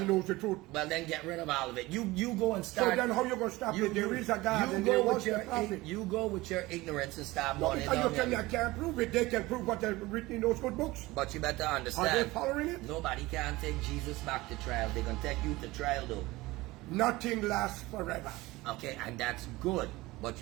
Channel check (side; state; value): left; quieter; 20.0 dB